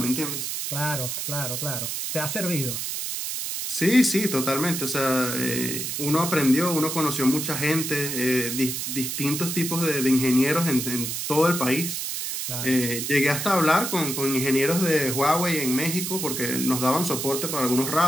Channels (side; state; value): right; noise; hiss, 3 dB below the sound